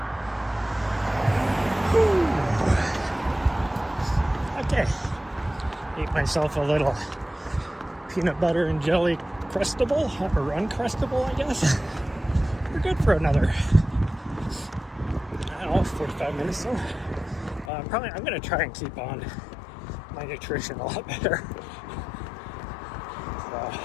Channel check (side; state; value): right; drops out; at 17.7 s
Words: Whew. Okay, ate myself a little peanut butter and jelly crustable, or uncrustable, I guess. We're good for another, I don't know, 45 minutes so. I'm going to try and keep on my nutrition a lot better. So,